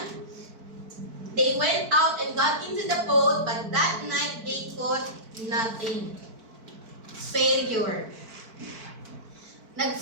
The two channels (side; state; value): left; late; 4.5 ms